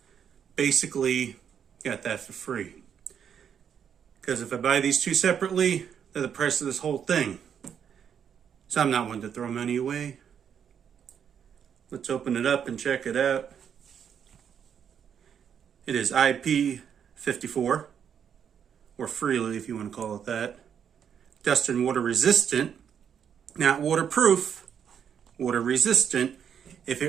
basically got that for free. Because if I buy these two separately, they're the price of this whole thing. So I'm not one to throw money away. Let's open it up and check it out. It is IP54, or freely if you want to call it that. Dust and water resistant, not waterproof, water resistant. If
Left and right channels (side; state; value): left; quieter; 8.1 dB